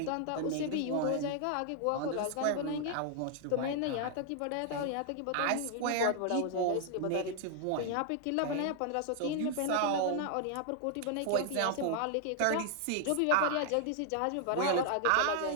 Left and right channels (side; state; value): both; different; correlation 0.00